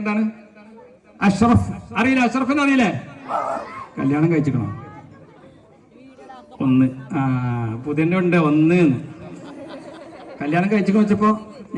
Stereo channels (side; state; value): both; identical; correlation 1.00